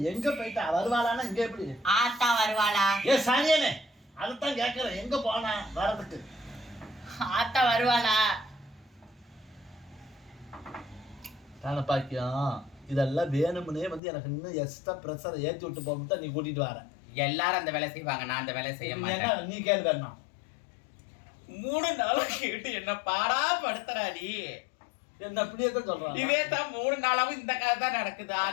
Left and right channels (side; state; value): right; drops out; at 14.0 s